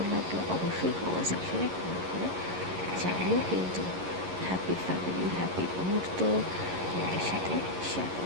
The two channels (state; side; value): late; left; 11 ms